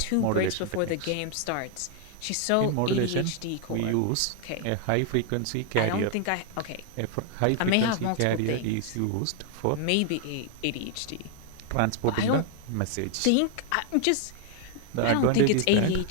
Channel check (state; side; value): different; both; correlation 0.00